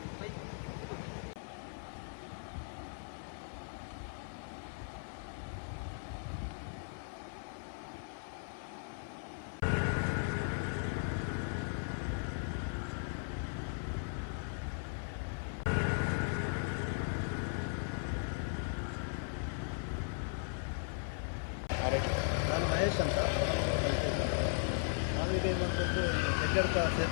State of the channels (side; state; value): right; silent; 53 dB below the other